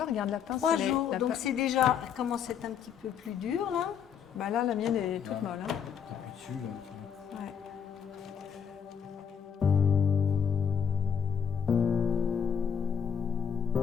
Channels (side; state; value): right; quieter; 7.5 dB